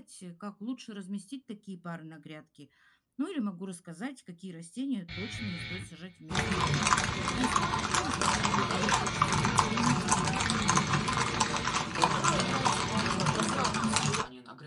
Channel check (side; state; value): both; identical; correlation 1.00